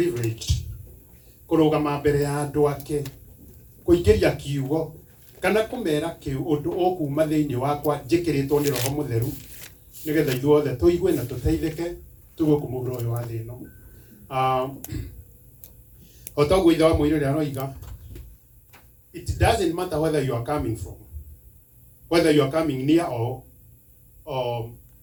kurugama mbere ya andu ake kuingiria kiugo kana kumera kiu undu ukuma thiini wakwa njikiritwo ni Roho Mutheru nigetha ithuothe tuigue na tuteithike tugukumura uyu wa thino. Otaguo ithe wa muiri ria roiga, it doesn't matter whether you are coming from, whether you are coming near or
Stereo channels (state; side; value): identical; both; correlation 1.00